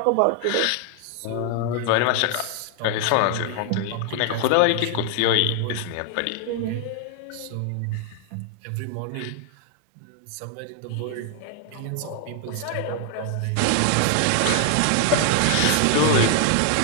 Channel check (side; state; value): both; different; correlation 0.00